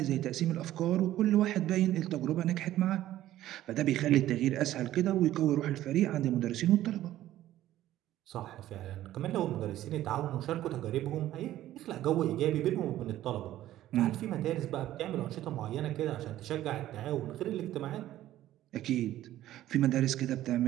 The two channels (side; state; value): left; quieter; 13.8 dB